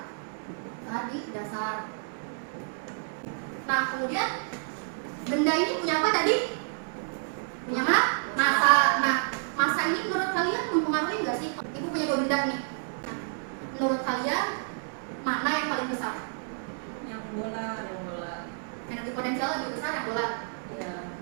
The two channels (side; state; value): left; silent; digital silence